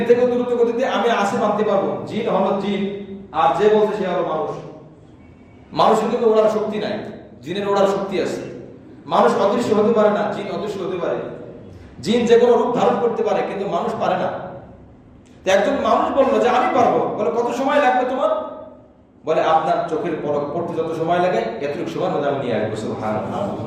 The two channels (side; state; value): both; identical; correlation 1.00